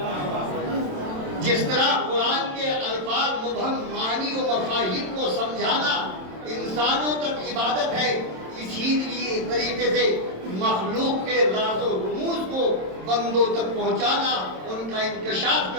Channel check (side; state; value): left; late; 27 ms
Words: جس طرح قرآن کے الفاظ مبہم معانی و مفاہیم کو سمجھانا انسانوں تک عبادت ہے، اسی طریقے سے مخلوق کے راز و رموز کو بندوں تک پہنچانا، ان کا انکشاف